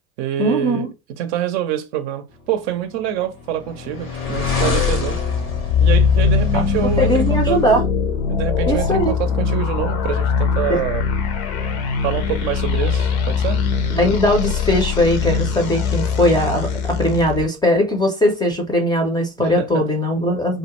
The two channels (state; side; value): normal; both; correlation 0.34